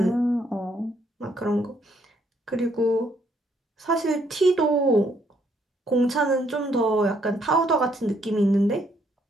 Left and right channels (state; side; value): normal; both; correlation 0.70